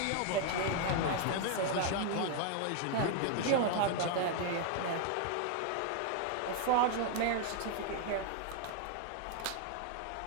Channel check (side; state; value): both; different; correlation 0.00